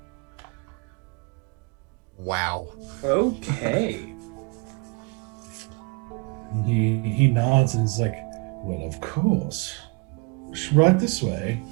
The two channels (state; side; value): quieter; left; 30.4 dB